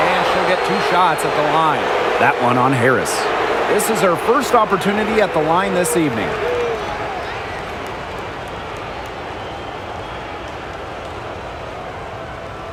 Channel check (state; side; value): identical; both; correlation 1.00